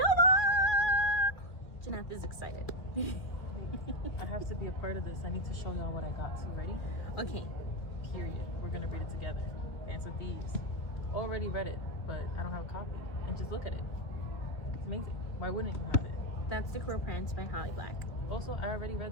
Jeanette is excited. I have to be a part of this. I need to show y'all what I got. So ready? Okay. Period. We're gonna read it together. Dance with Thieves. Already read it, but I don't have a copy. And just look at it. It's amazing. Why wouldn't you have it? That's The Cruel Prince by Holly Black. Also, I already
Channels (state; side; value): late; right; 2.2 ms